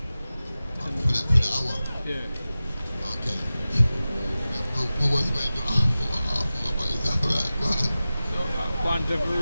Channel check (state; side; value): inverted; both; correlation -0.95